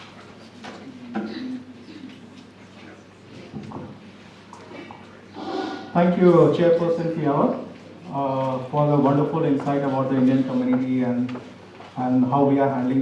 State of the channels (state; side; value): identical; both; correlation 1.00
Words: Thank you, Chairperson FIAWA, for the wonderful insight about the Indian community and how we are handling